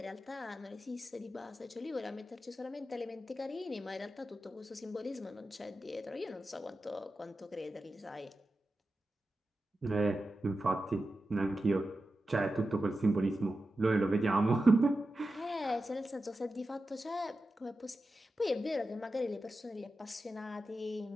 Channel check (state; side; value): normal; both; correlation 0.92